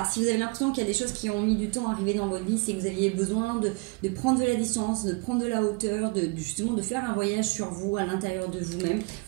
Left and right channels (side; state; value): left; quieter; 28.7 dB